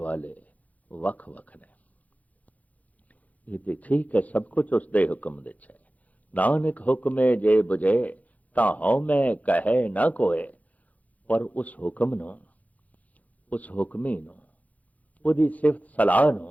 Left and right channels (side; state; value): right; late; 0.074 ms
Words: वख वख ने। ये तो ठीक है, सब कुछ उसदे हुक्म दे है। नानक हुक्मे जे बुझे, ता हौ मैं कहे ना कोय। पर उस हुक्म नूं, उस हुक्मी नूं, उहदी सिफत सलाह